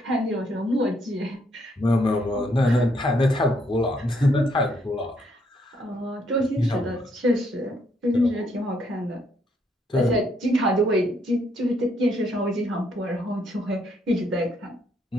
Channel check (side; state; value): both; normal; correlation 0.72